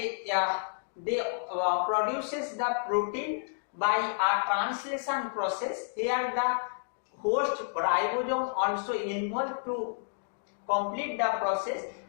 produces the protein by a translation process. Here the host ribosome also involved to complete the process,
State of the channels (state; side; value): silent; right; digital silence